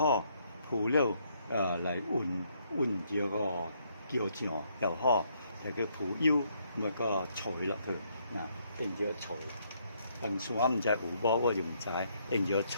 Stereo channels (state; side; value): inverted; both; correlation -0.71